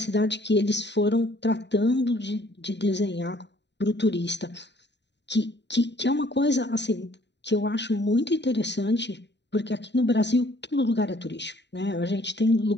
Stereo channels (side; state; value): right; late; 0.51 ms